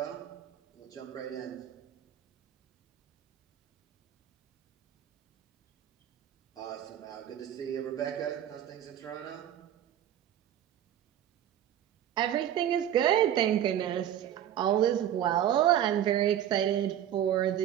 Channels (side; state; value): left; quieter; 10.9 dB